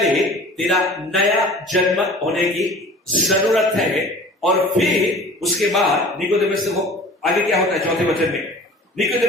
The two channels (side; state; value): both; normal; correlation 0.44